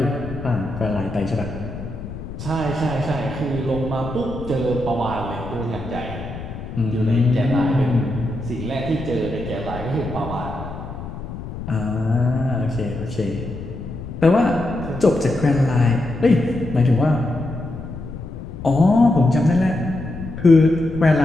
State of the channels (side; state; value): left; noise; rumble, 10 dB below the sound